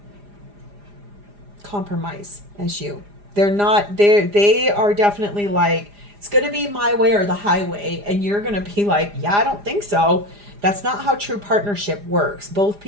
compromise as you. They are definitely like, it's going to be my way or the highway. And you're going to be like, yeah, I don't think so. That's not how true partnership works. Both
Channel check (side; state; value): left; late; 4.9 ms